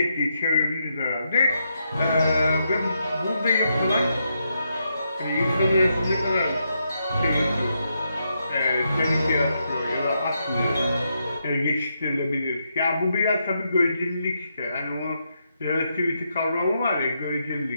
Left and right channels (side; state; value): both; inverted; correlation -0.81